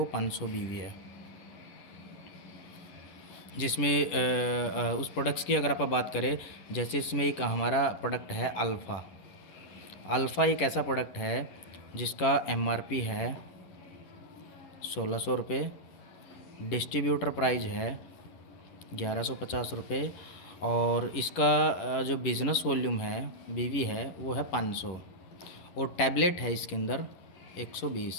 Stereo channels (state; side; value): late; right; 10 ms